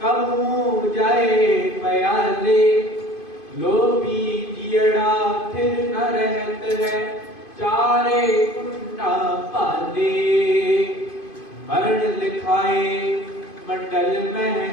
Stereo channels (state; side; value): late; right; 2.5 ms